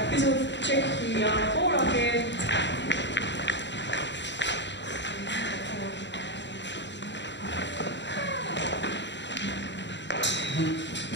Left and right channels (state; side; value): late; right; 0.52 ms